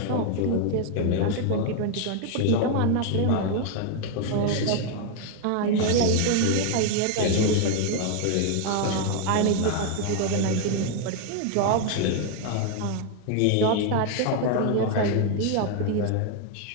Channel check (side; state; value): both; different; correlation 0.01